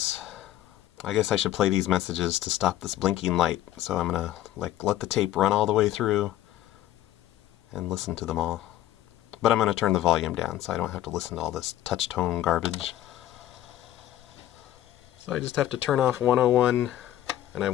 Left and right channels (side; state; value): right; quieter; 13.3 dB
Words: I guess I should play these messages to stop this blinking light. So I'm gonna let the tape run all the way through and listen to them all. But I'm gonna turn the volume down so I don't have to listen to all this touch tone garbage. So I just have to turn off 101 and I